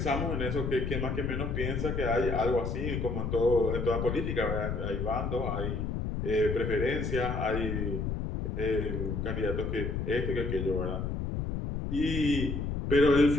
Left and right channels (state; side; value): noise; left; rumble, 2 dB below the sound